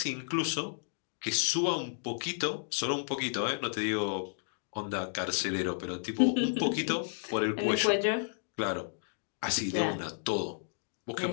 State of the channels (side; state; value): right; silent; digital silence